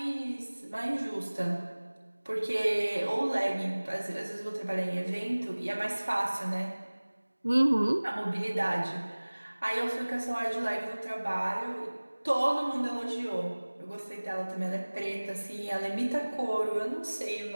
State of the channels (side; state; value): both; inverted; correlation -1.00